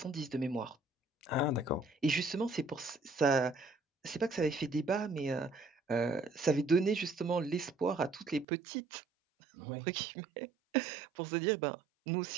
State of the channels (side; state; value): left; drops out; at 8.5 s